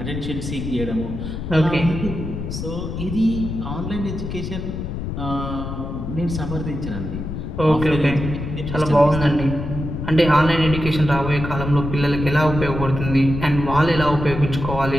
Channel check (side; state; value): left; noise; rumble, 6 dB below the sound